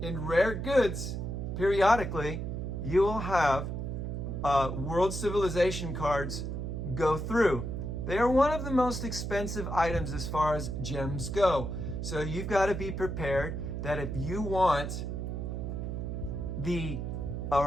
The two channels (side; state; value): right; noise; hum, 4 dB below the sound